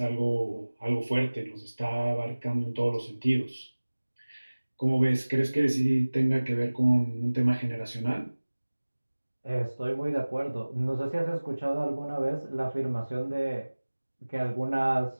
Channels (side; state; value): both; inverted; correlation -1.00